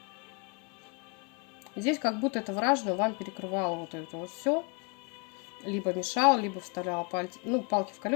Здесь как будто это вражина вам перекрывало вот это вот все. Либо мешал, либо вставляла палки в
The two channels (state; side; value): quieter; right; 33.9 dB